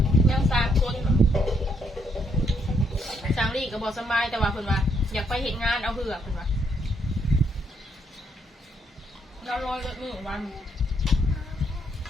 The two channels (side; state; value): both; normal; correlation 0.73